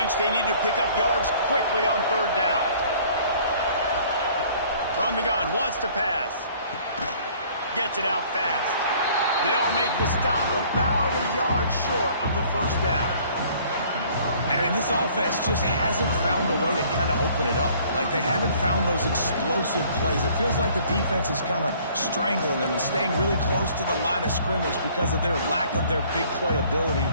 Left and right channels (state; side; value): inverted; both; correlation -0.56